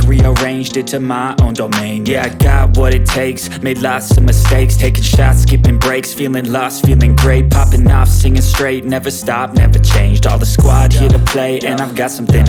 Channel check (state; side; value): identical; both; correlation 1.00